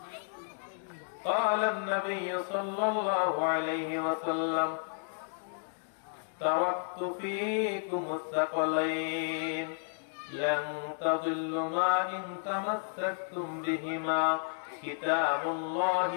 قال النبي صلى الله عليه وسلم تركت فيكم الثقلين لن تضلوا ما إن تمسكتم بهما كتاب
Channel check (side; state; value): right; silent; digital silence